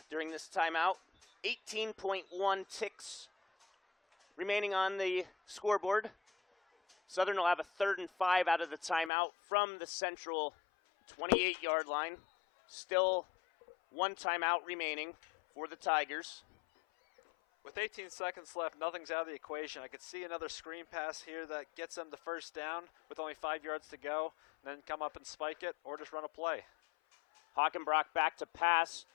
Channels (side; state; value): right; drops out; at 9.1 s